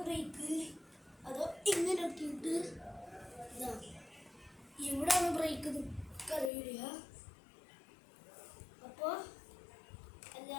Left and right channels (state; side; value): drops out; right; at 6.5 s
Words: ബ്രേക്ക് അതോ ഇങ്ങനെ ആക്കിയിട്ട് ഇതാ ഇവിടെയാണ് ബ്രേക്ക് അറിയില്ല. അപ്പോൾ